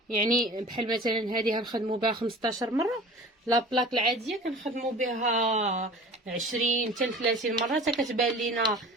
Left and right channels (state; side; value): normal; both; correlation 0.40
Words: يعني بحال مثلا هذه غنخدموا بها 15 مره، لا بلاك العاديه كنخدموا بها 20 حتى 30 مره حتى كتبان لينا